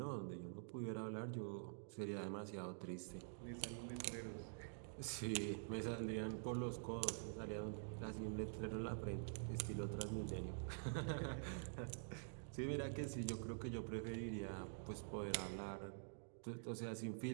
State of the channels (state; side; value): silent; left; digital silence